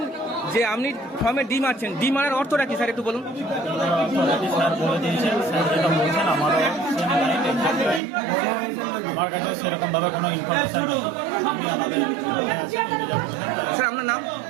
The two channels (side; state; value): left; drops out; at 8.0 s